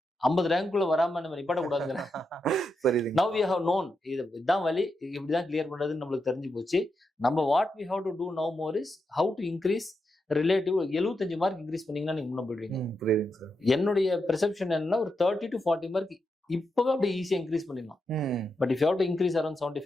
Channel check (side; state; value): both; normal; correlation 0.85